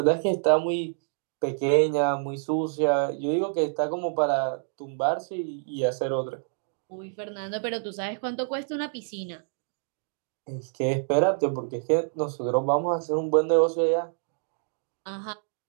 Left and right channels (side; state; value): left; silent; digital silence